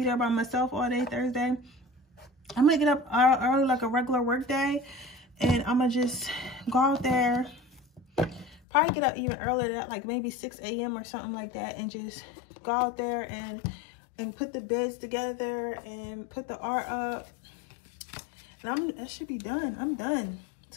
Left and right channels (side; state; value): right; drops out; at 8.6 s